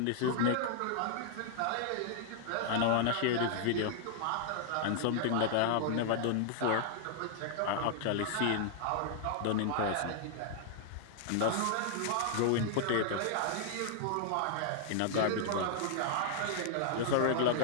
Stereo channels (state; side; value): different; both; correlation -0.01